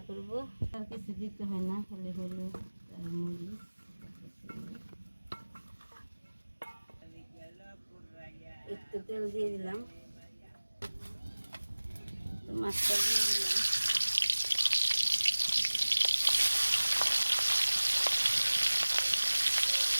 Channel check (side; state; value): both; inverted; correlation -1.00